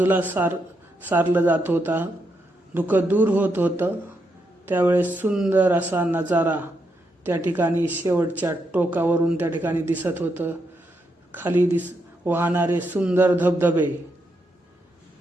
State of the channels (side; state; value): both; normal; correlation 0.81